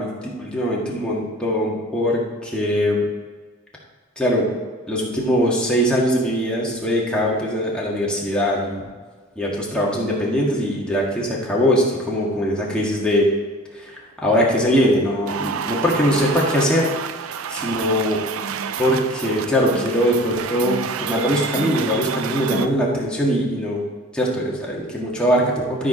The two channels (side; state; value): both; normal; correlation 0.44